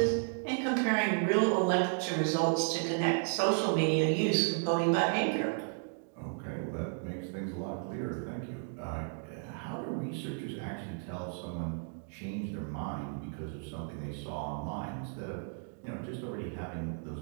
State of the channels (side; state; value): left; silent; 55 dB below the other